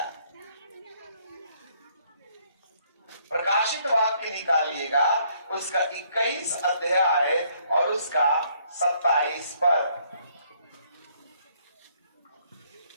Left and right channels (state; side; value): inverted; both; correlation -0.67